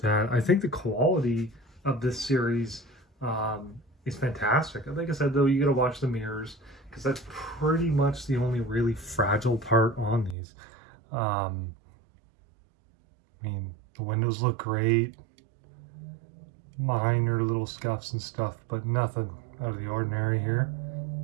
I think the quality of this series is fantastic. Like I said, though, you got to watch the mirrors, because that's pretty much the only really fragile part on these. I mean, the windows look great. Minor little scuffs and stuff, but nothing out of the ordinary here.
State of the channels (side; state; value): left; drops out; at 10.4 s